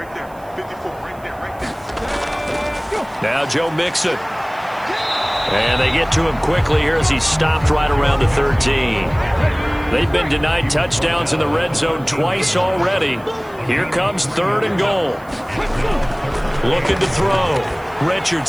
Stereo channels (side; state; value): right; noise; hiss, 27 dB below the sound